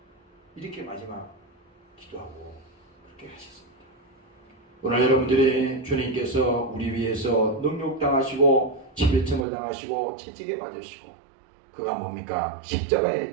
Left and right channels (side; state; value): left; drops out; at 9.4 s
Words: 이렇게 마지막 기도하고 그렇게 하셨습니다. 오늘 여러분들이 주님께서 우리 위해서 능욕당하시고 침뱉음을 당하시고 채찍에 맞으시고, 그가 뭡니까?